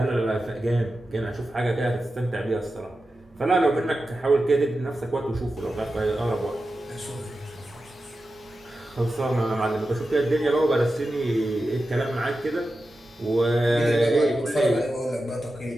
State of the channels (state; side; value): normal; both; correlation 0.92